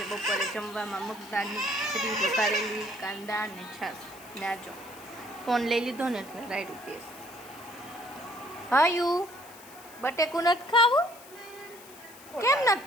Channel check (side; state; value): left; noise; hiss, 20 dB below the sound